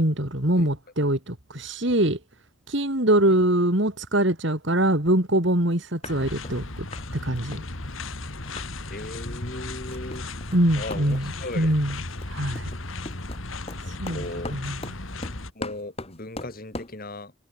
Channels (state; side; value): normal; both; correlation 0.42